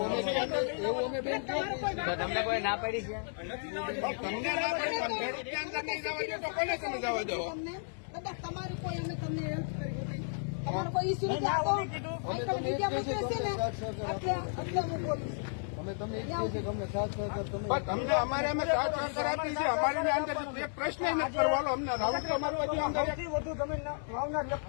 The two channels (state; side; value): silent; right; digital silence